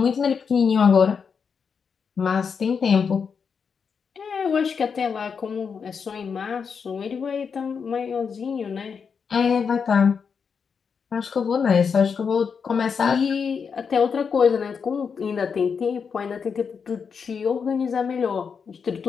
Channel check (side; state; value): right; quieter; 6.1 dB